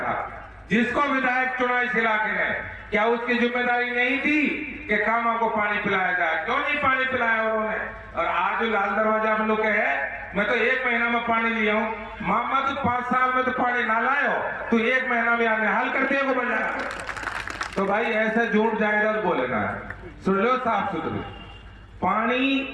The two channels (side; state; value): both; identical; correlation 1.00